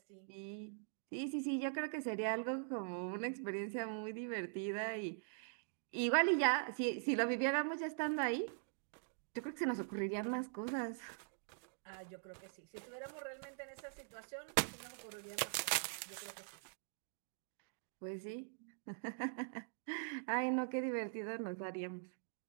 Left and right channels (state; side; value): silent; left; digital silence